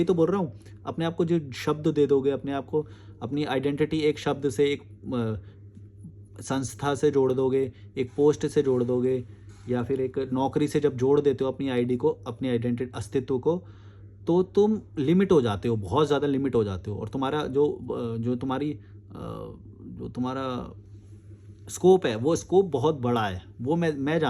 तो बोल रहा हूँ, अपने आप को जो शब्द दे दोगे, अपने आप को अपनी आइडेंटिटी एक शब्द से, एक संस्था से जोड़ दोगे, एक पोस्ट से जोड़ दोगे, या फिर एक नौकरी से जब जोड़ देते हो अपनी आईडी को, अपनी आइडेंटिटी अस्तित्व को, तो तुम लिमिट हो जाते हो, बहुत ज़्यादा लिमिट हो जाते हो। और तुम्हारा जो तुम्हारा स्कोप है, वो स्कोप बहुत बड़ा है। वो मैं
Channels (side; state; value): both; identical; correlation 1.00